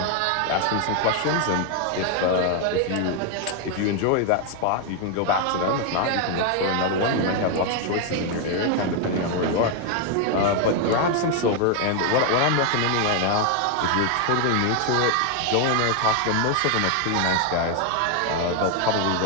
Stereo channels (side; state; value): both; different; correlation 0.01